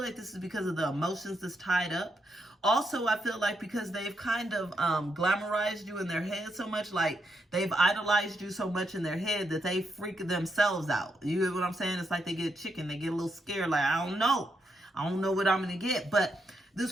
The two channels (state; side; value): normal; both; correlation 0.80